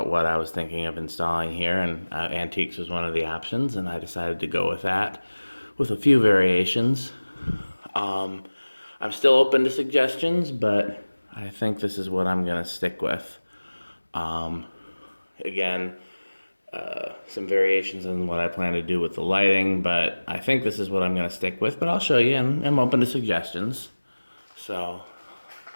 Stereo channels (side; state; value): both; inverted; correlation -1.00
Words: what I was thinking of installing here, and antiques was one of the options, and I decided to go with that with a few variations. I'm still open to suggestions, but I think this is what I'm going to stick with. Again, some variations in what I plan to do with the lighting, but I think this is what I'm going to stick with, but I'll show you, and I'm open to suggestions. So,